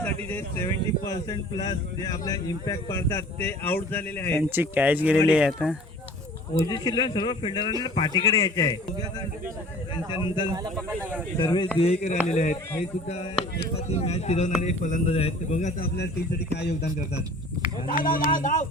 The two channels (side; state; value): both; normal; correlation 0.46